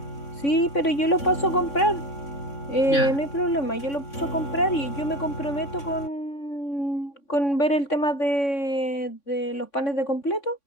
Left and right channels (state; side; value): late; right; 3.6 ms